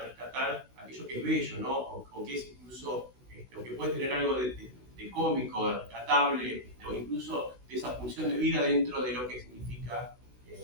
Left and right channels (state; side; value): late; left; 16 ms